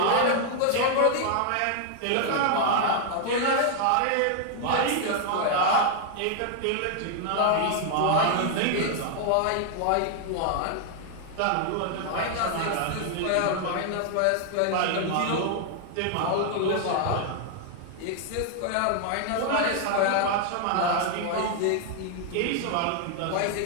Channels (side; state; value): both; different; correlation 0.00